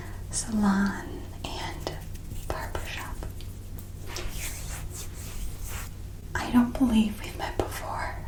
salon and barbershop. I don't believe we've met before.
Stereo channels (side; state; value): both; identical; correlation 1.00